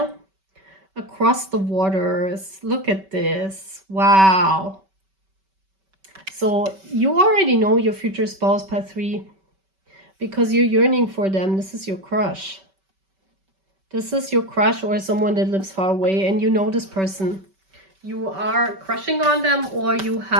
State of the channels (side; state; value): left; late; 5.2 ms